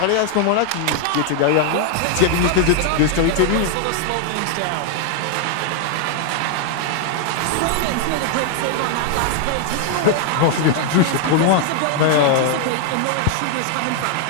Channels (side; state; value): both; different; correlation 0.00